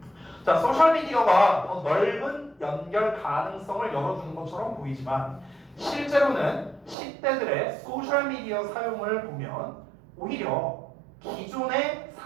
자, 소셜미디어가 더 넓은 연결 가능성을 열어주는 것처럼 보이지만 실제로는 10대들의 소셜미디어 사용을 보면 오히려 기존의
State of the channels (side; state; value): left; drops out; at 7.0 s